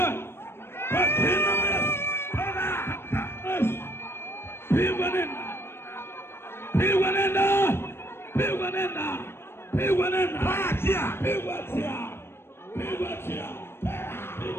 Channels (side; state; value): right; late; 0.12 ms